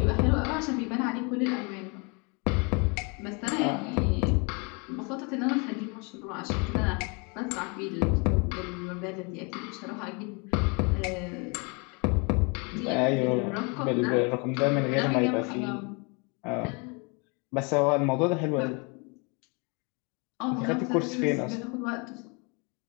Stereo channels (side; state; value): right; quieter; 31.9 dB